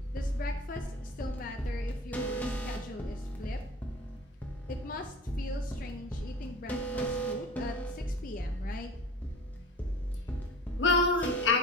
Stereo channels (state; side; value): normal; both; correlation 0.40